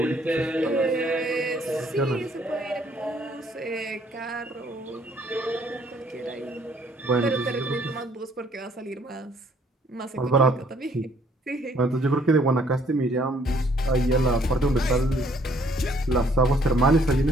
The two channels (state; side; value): normal; both; correlation 0.64